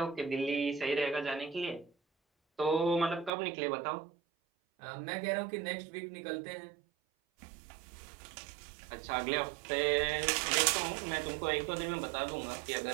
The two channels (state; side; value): drops out; left; at 3.3 s